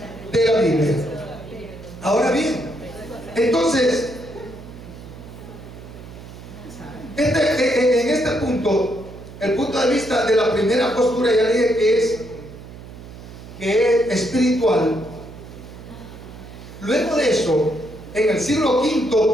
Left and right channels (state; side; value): noise; right; hum, 15 dB below the sound